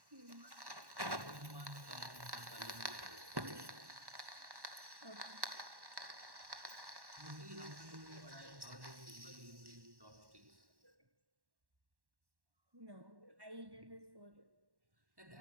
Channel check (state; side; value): late; left; 1.1 ms